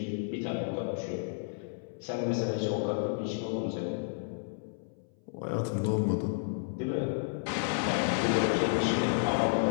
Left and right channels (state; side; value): silent; right; 57 dB below the other